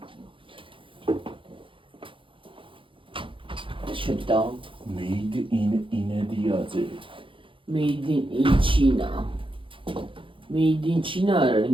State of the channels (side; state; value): left; late; 0.25 ms